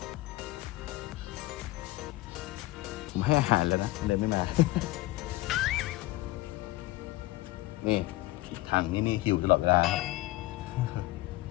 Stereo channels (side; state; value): right; quieter; 18.9 dB